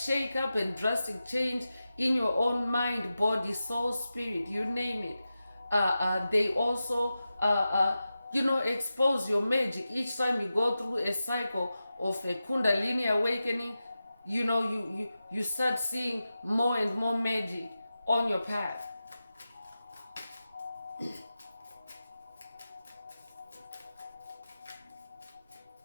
and drastic change in your own mind, body, soul, spirit, you name it. They also, expose your magic. Each time you go through a cycle of a Kundalini awakening, you start seeing more and more magic on your path.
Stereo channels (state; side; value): inverted; both; correlation -0.93